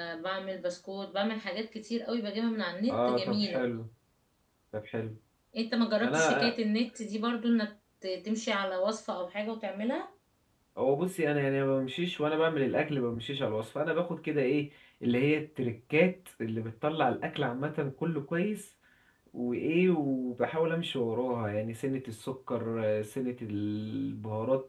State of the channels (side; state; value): both; identical; correlation 1.00